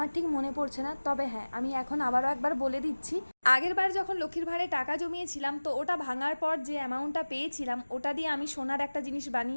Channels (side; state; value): both; inverted; correlation -1.00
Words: ঠিক মনে পড়ছে না, তবে হ্যাঁ, আমি এখন আবারও একবার বলে দিচ্ছি। আগের বার যখন লক্ষ্মীর ভাঁড়ে টাকা জমিয়েছিলাম, তো ওটা ভাঙার পর যে অ্যামাউন্টটা পেয়েছিলাম ওটা দিয়ে আমি সোনার একটা জিনিস